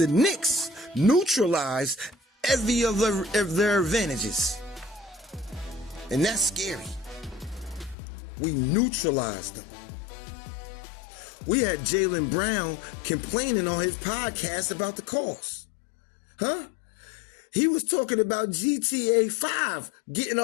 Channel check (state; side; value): drops out; right; at 8.0 s